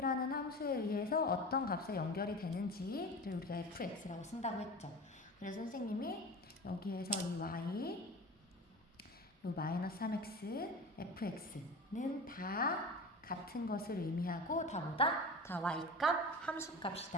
함수에 의해서 어떤 값에 연결이 되는지를 우리가 fx라고 쓴다고 했죠. 그래서 선생님이 여기에서 이 y, 요 마이너스 3x, fx는 다 같은 것을 의미하고 다 뭐다? 다 y값,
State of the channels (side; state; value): both; normal; correlation 0.32